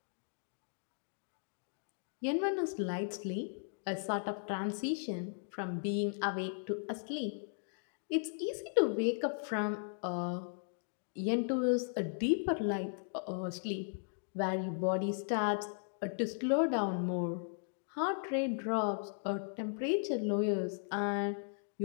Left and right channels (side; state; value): right; silent; digital silence